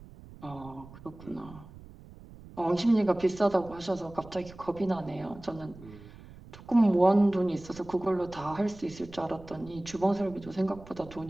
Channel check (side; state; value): right; noise; rumble, 19 dB below the sound